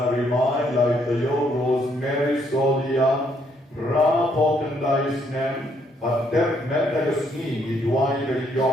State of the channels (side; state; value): both; normal; correlation 0.70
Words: Rimai, Laitayo, Rosemary Solia, Bakhyndai Snem, Pater Metagasni, Idwai,